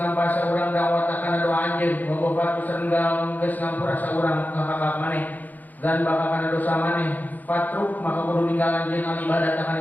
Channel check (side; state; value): right; late; 0.082 ms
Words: saurang dakwah kana doa anjeun, bobobat sareng geus ngampura saurang kahakak maneh. Dan bakal kana dosa maneh. Patruk maka kudu ninggal anjeun al ibadah